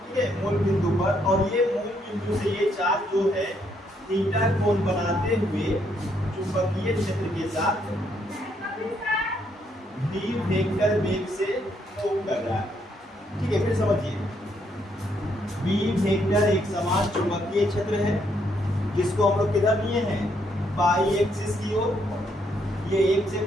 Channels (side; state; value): both; normal; correlation 0.73